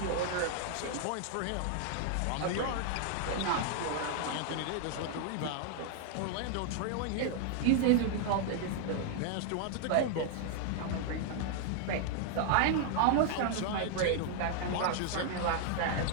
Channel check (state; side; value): different; both; correlation 0.00